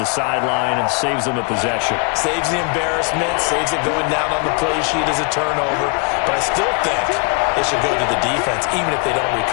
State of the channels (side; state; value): right; quieter; 33.1 dB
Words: the sideline and saves them a possession. Saves the embarrassment, saves it going down on the play sheet as a turnover, but I still think they should go to the defense, even if they don't